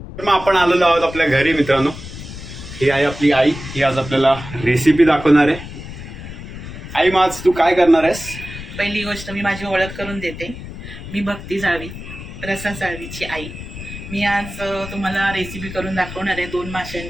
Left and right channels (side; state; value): left; noise; rumble, 11 dB below the sound